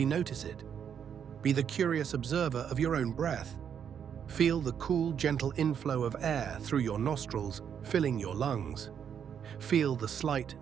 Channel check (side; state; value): left; quieter; 8.1 dB